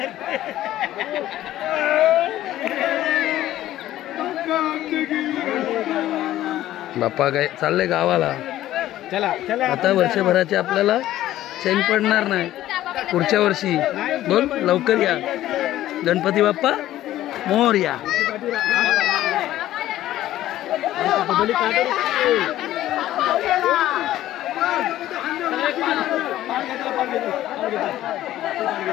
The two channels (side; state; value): right; quieter; 13.9 dB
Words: बाप्पा काय चाललंय गावाला. चला चला आता वर्षभराचे आपल्याला चैन पडणार नाही. पुढच्या वर्षी बोल लवकर या. गणपती बाप्पा मोरया.